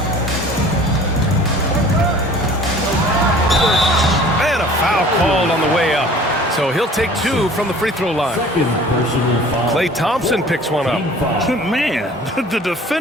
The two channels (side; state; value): both; normal; correlation 0.48